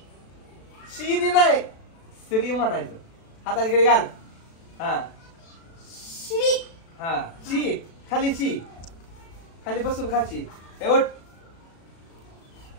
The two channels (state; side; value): late; right; 36 ms